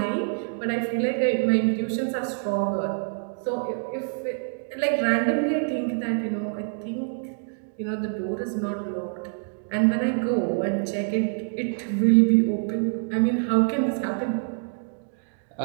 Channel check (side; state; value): left; silent; 61 dB below the other